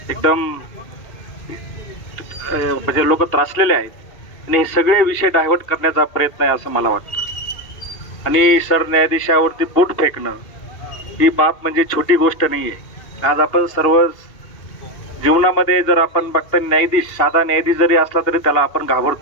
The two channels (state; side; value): late; right; 2.8 ms